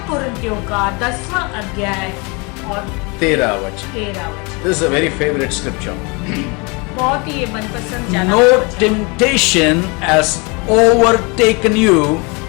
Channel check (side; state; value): right; quieter; 29.7 dB